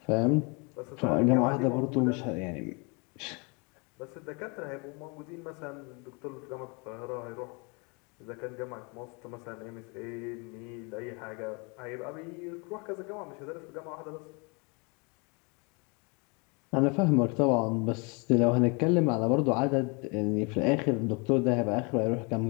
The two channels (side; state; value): right; quieter; 31.6 dB